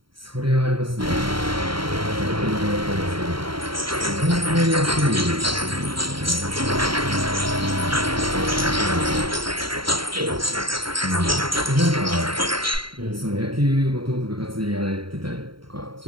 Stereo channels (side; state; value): left; late; 0.73 ms